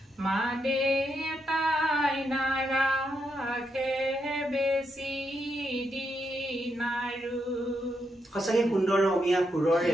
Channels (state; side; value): normal; both; correlation 0.81